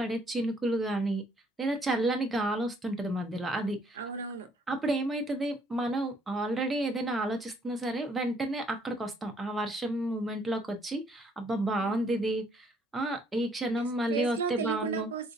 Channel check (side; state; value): both; normal; correlation 0.65